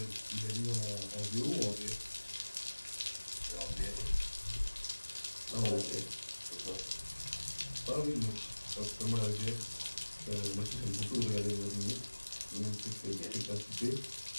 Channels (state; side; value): inverted; both; correlation -1.00